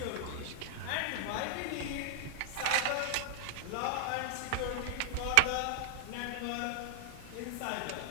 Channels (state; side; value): different; both; correlation -0.01